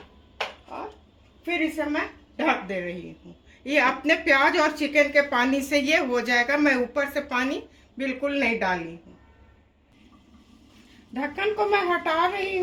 और फिर इसे मैं ढक दे रही हूँ। ये अपने प्याज और चिकन के पानी से ये हो जाएगा। मैं ऊपर से पानी बिल्कुल नहीं डाली हूँ। ढक्कन को मैं हटा रही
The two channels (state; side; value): identical; both; correlation 1.00